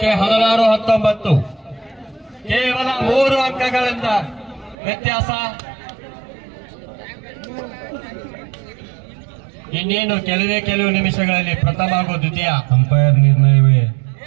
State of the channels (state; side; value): drops out; left; at 4.8 s